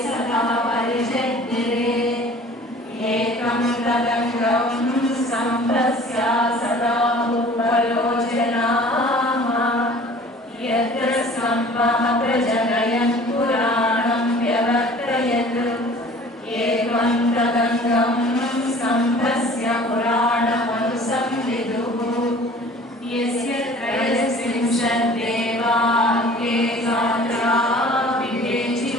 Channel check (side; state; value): both; normal; correlation 0.47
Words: यत्रस्तम्भः प्रजनयन् पुराणं व्यवर्तयत् एवं तदङ्गं स्तम्भस्य पुराणमनुसंविदुः यस्य त्रयस्त्रिंशद्देवाङ्गे गात्रा